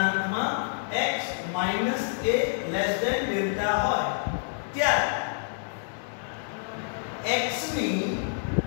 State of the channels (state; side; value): silent; right; digital silence